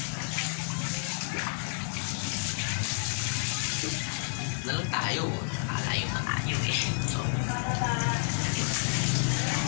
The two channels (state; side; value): silent; right; 58 dB below the other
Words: Nalang tayo. Nakalayo na tayo eh. So,